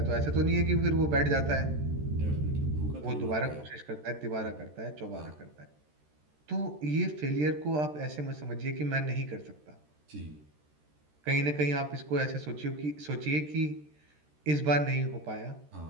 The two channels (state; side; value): late; left; 13 ms